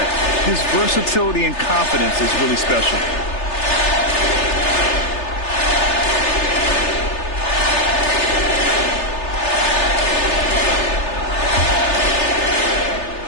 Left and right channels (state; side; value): late; right; 3.3 ms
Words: His versatility and confidence is really special.